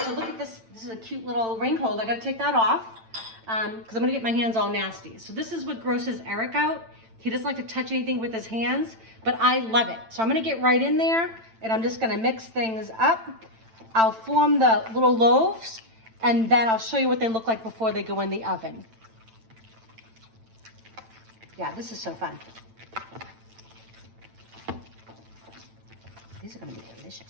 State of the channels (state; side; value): late; left; 8.9 ms